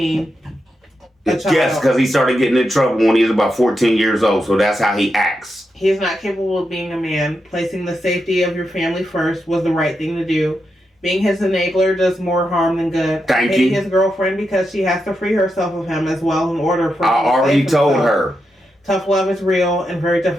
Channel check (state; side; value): normal; both; correlation 0.86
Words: Yes, because he started getting in trouble when he was about 14 years old. So that's how he acts. He is not capable of being a man. Placing the safety of your family first was the right thing to do. Being his enabler does more harm than good. Thank Hating you. his girlfriend because she has to free herself of him as well in order for him I to already save told himself. her. Tough love is real and very